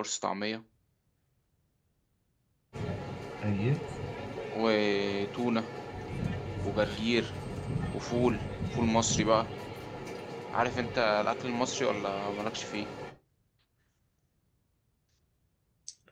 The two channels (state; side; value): identical; both; correlation 1.00